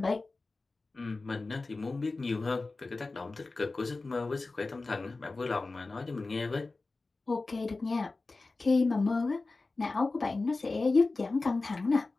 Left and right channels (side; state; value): right; quieter; 3.5 dB